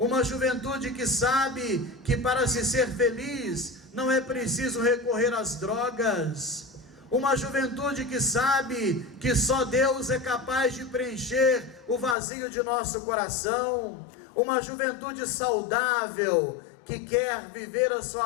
juventude que sabe que para se ser feliz não é preciso recorrer às drogas, uma juventude que sabe que só Deus é capaz de preencher o vazio de nosso coração, uma juventude saudável que quer viver a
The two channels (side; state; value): right; drops out; at 12.2 s